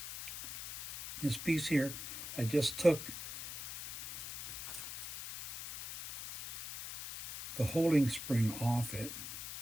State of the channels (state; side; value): noise; left; hiss, 8 dB below the sound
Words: this piece here. I just took the holding spring off it.